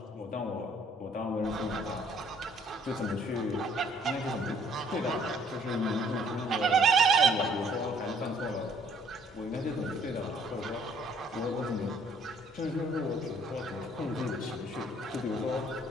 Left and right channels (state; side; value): normal; both; correlation 0.62